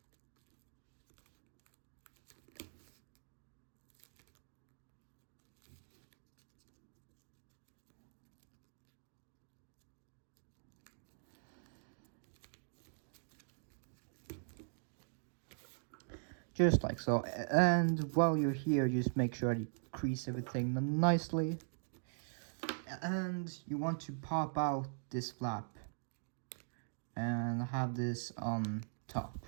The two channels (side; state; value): left; silent; digital silence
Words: Just like so. And while you're here, just make sure you crease everything nicely. And you want to pop out this flap and have this on top